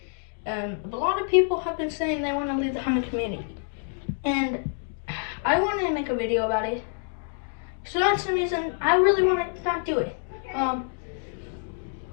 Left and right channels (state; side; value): silent; right; 60 dB below the other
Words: a lot of people have been saying they want to leave the hunting community, and I wanted to make a video about it, so that's the reason I really want to not do it,